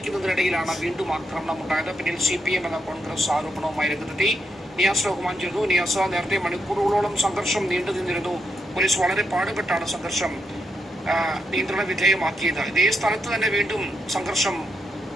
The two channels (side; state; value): both; normal; correlation 0.82